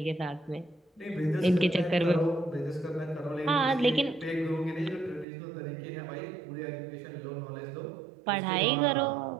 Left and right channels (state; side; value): drops out; left; at 5.2 s